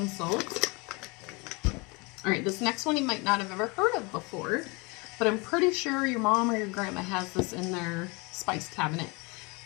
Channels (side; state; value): right; quieter; 27.9 dB